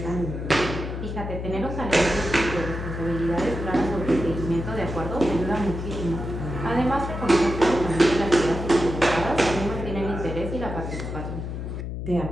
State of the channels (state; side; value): noise; left; hum, 5 dB below the sound